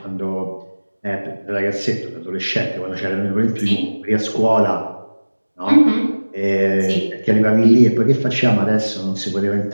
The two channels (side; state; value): both; inverted; correlation -1.00